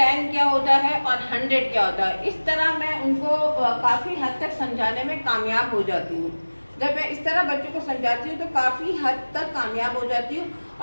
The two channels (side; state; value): both; inverted; correlation -1.00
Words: क्या होता है और 100 क्या होता है। इस तरह मैं उनको काफ़ी हद तक समझाने में कामयाब हो जाती हूँ। जब मैं इस तरह बच्चों को समझाती हूँ तो काफ़ी हद तक कामयाब हो जाती हूँ,